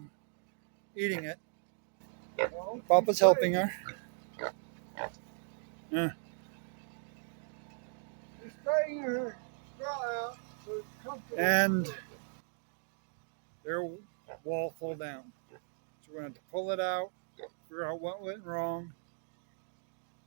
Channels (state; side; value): silent; left; digital silence